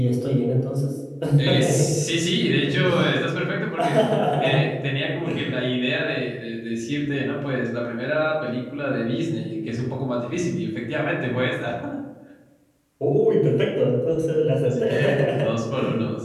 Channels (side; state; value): both; identical; correlation 1.00